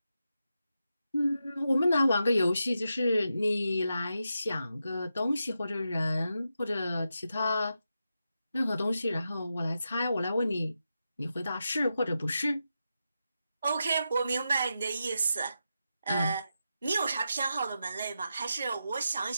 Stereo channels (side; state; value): both; inverted; correlation -0.88